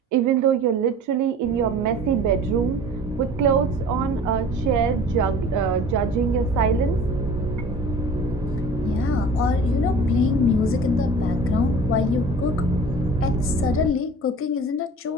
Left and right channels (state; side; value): normal; both; correlation 0.43